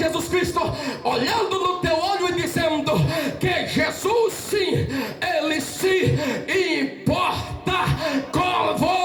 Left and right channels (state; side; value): identical; both; correlation 1.00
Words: Cristo, olhando no teu olho e dizendo que Jesus, sim, Ele se importa com